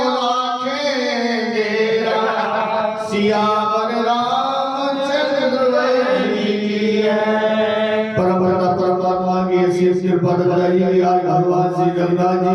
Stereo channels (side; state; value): both; identical; correlation 1.00